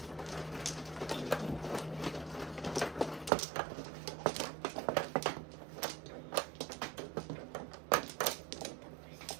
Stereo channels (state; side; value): drops out; left; at 3.3 s